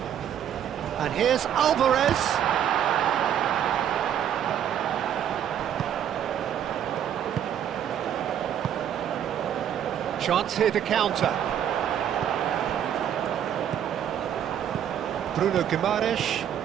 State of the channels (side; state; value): left; quieter; 9.7 dB